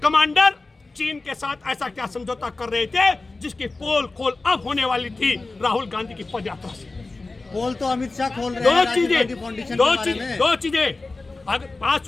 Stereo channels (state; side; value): quieter; right; 3.4 dB